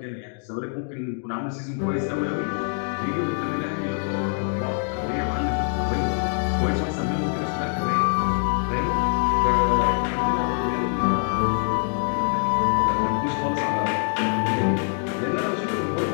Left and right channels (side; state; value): right; silent; 56 dB below the other